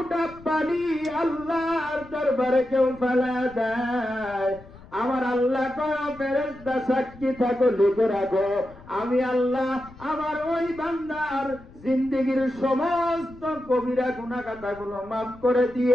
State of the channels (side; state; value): left; noise; rumble, 21 dB below the sound